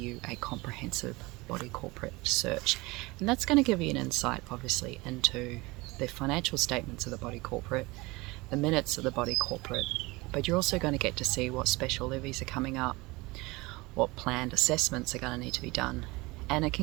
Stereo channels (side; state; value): left; quieter; 23.0 dB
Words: a comprehensive body corporate search, and that's going to give you an insight obviously into the financial statements of the body corporate, the minutes of the body corporate, but you're also going to get to see what special levies are coming up, what planned assessments are going to need to be done, and it